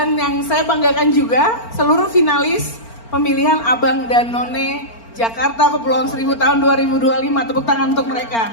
yang saya banggakan juga seluruh finalis pemilihan Abang dan None Jakarta Kepulauan Seribu tahun 2025, tepuk tangan untuk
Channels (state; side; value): late; right; 4.4 ms